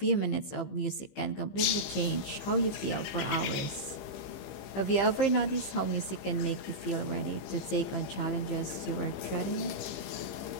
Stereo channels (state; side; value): late; right; 15 ms